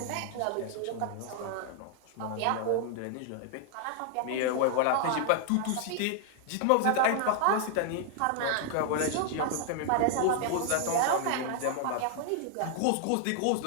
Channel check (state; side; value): different; both; correlation 0.00